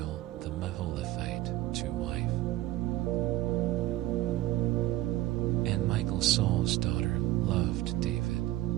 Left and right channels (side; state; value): left; quieter; 15.9 dB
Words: the Meholathite to wife. And Michal Saul's daughter loved David,